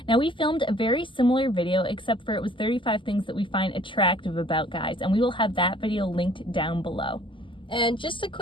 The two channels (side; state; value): right; late; 0.25 ms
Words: Now we filmed a very similar video, except for it was 35 things that we find attractive about guys, and we will have that video linked down below. And just a